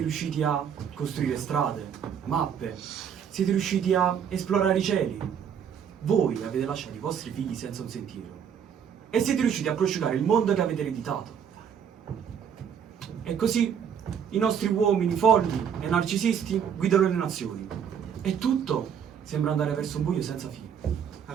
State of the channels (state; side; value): quieter; left; 8.0 dB